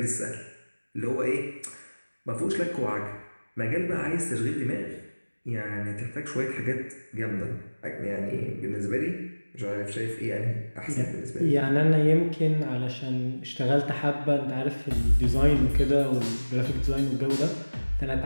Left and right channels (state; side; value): inverted; both; correlation -1.00